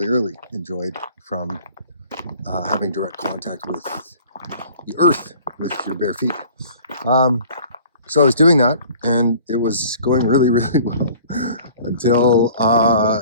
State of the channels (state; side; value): inverted; both; correlation -0.49